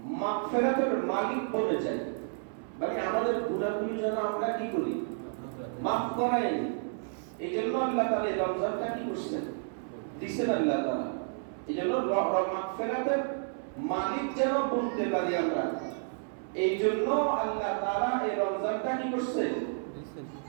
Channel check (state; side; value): silent; left; 57 dB below the other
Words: মাগফিরাতের মালিক বনে যাই, মানে আমাদের গুনাহগুলো যেন আমরা কি করি, মাফ করাই। এই জন্য আল্লাহ তাআলা এই রমজানটা কি করছেন, দিচ্ছেন আল্লাহ তাআলা। এই জন্য মাগফিরাতের মালিক যেন বলতে পারি আমরা, এই জন্য আল্লাহ তাআলা এই রমজানটা কি করছেন,